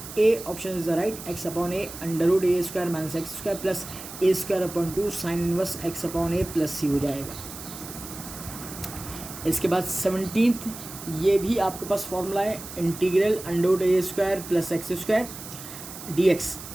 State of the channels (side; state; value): right; noise; hiss, 12 dB below the sound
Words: A option is the right, x upon a under a square minus x square plus a square upon 2 sine inverse x upon a plus c हो जाएगा। इसके बाद 17th, ये भी आपके पास formula है integral under a square plus x square dx,